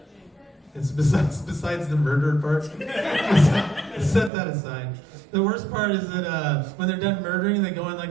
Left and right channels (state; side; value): drops out; left; at 4.3 s